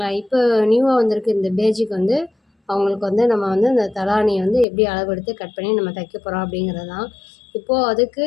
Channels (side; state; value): right; drops out; at 4.7 s